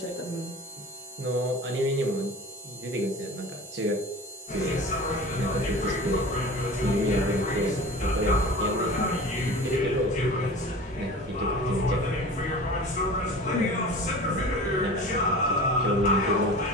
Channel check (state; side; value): normal; both; correlation 0.38